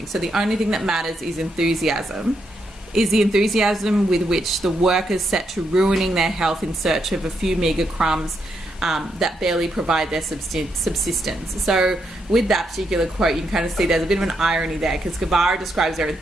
So the only thing that matters is enthusiasm. Is the enthusiasm with which the workers set to ruining their health in search of a few meagre crumbs that barely provide their subsistence. So with that particular quote, you can kind of see there's a bit of an irony there, because Guevara describes their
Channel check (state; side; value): normal; both; correlation 0.80